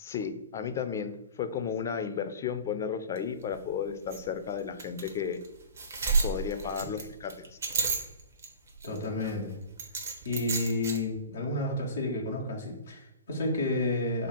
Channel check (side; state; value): both; inverted; correlation -0.38